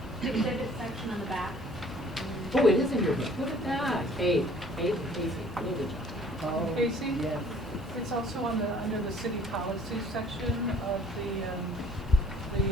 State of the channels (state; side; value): normal; both; correlation 0.55